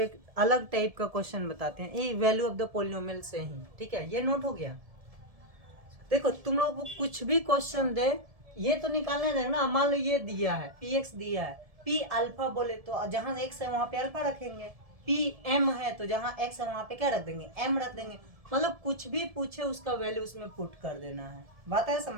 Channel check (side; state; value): left; late; 1.7 ms